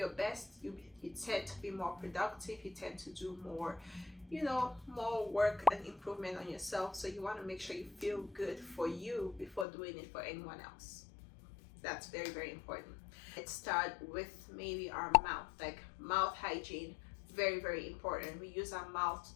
best, you tend to be more productive, you tend to do more, more work and improvement on yourself. So you want to make sure you feel good for you before doing it for anyone else. That's very, very important. Let's start with maybe our mouth, like mouth hygiene. Very, very important. We use our mouth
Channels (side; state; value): right; drops out; at 9.7 s